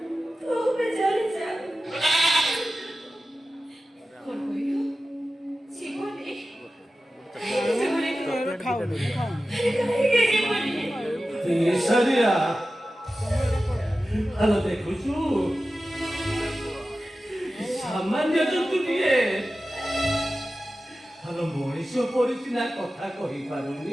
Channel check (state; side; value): normal; both; correlation 0.94